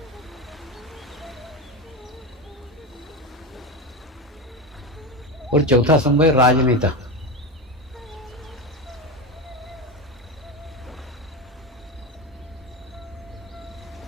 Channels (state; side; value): normal; both; correlation 0.20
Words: और चौथा स्तंभ है राजनेता।